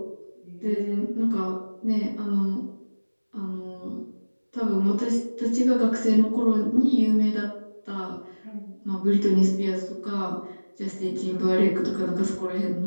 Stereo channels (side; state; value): both; inverted; correlation -1.00